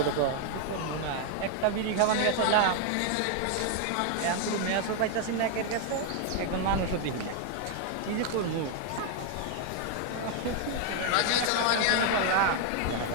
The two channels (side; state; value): both; different; correlation 0.00